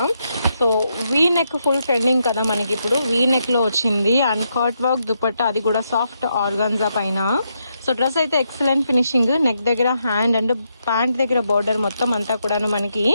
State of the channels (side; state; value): both; inverted; correlation -0.81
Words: So V neck full trending కదా మనకి ఇప్పుడు. వీ నెక్ లో వచ్చింది అండ్ కట్ వర్క్ దుపట్టా, అది కూడా సాఫ్ట్ ఆర్గాన్జా పైన. సో డ్రెస్ అయితే ఎక్సలెంట్ ఫినిషింగ్. నెక్ దగ్గర హ్యాండ్ అండ్ ప్యాంట్ దగ్గర బోర్డర్ మొత్తం అంతా కూడాను మనకి